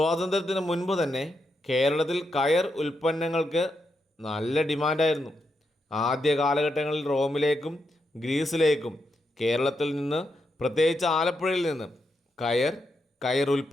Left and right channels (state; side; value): normal; both; correlation 0.83